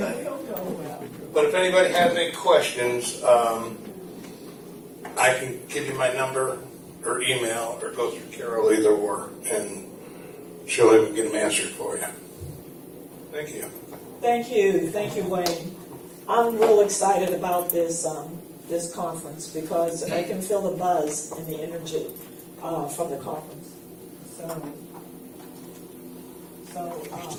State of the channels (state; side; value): identical; both; correlation 1.00